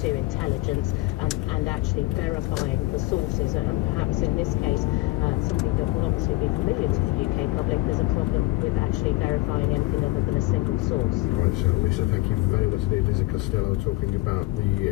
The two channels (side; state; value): right; quieter; 19.0 dB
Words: to intelligence and actually verifying the sources, and perhaps in this case something that will obviously be familiar to the UK public. There's a problem with actually verifying anything other than a single source. Right, so Lisa, thank you very much indeed. Lisa Costello talking about